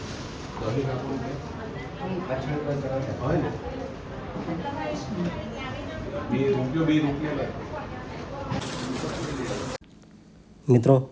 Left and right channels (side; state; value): both; identical; correlation 1.00